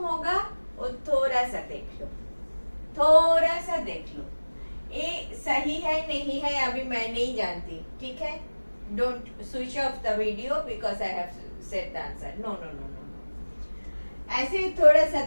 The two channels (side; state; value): both; inverted; correlation -1.00